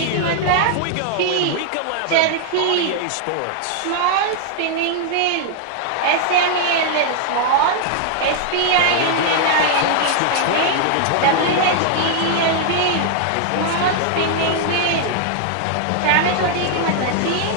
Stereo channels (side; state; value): both; different; correlation 0.00